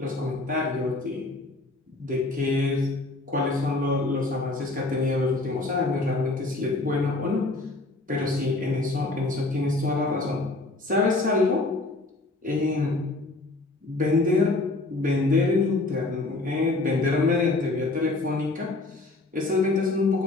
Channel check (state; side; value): quieter; right; 3.1 dB